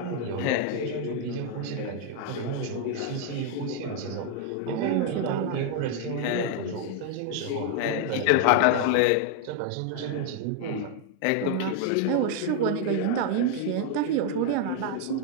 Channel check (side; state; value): both; different; correlation 0.00